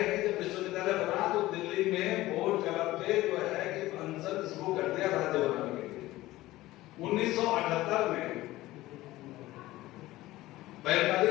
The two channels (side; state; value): right; quieter; 17.2 dB